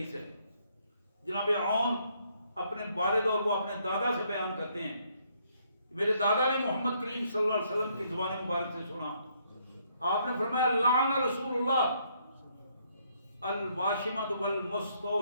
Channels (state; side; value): inverted; both; correlation -0.70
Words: ہے. جناب عون اپنے والد اور وہ اپنے دادا سے بیان کرتے ہیں، میرے دادا نے محمد کریم صلی اللہ علیہ وسلم کی زبان مبارک سے سنا، آپ نے فرمایا لعن رسول اللہ الواشمۃ